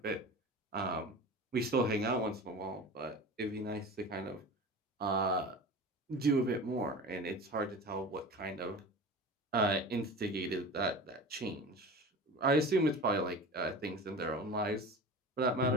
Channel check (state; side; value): normal; both; correlation 0.34